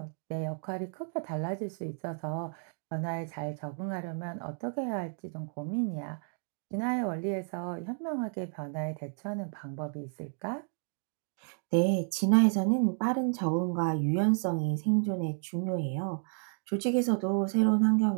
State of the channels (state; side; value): silent; left; 57 dB below the other